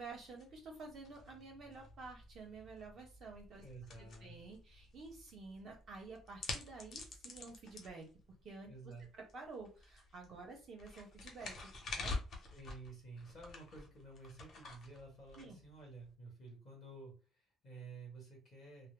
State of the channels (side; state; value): both; normal; correlation 0.63